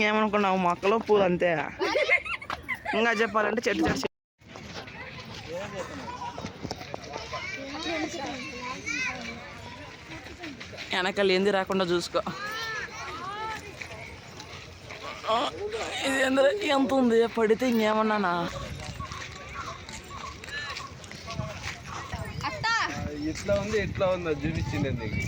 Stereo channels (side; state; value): both; identical; correlation 1.00